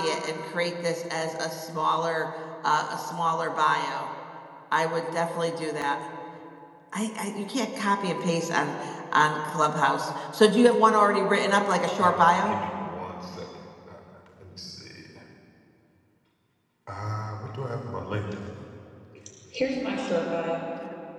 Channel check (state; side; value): identical; both; correlation 1.00